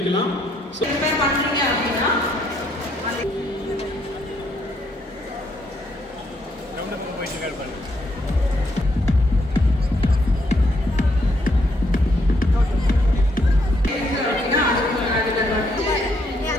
சோ ப்ரிப்பேர் பண்றீங்க அப்படினா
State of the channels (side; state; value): both; normal; correlation 0.73